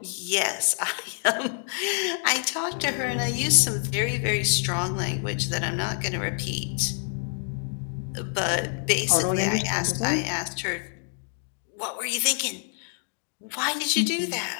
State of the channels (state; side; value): silent; right; 60 dB below the other